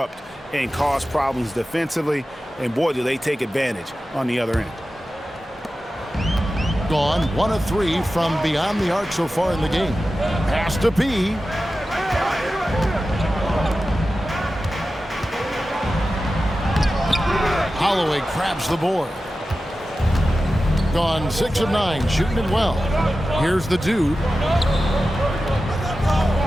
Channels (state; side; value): normal; both; correlation 0.93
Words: and cause problems defensively, and boy, do they take advantage on the other end. Gone 1 of 3 from beyond the arc so far in the game. Pass to P. Holloway grabs the board. Gone 6 of 9, shooting it well. Here's the dude.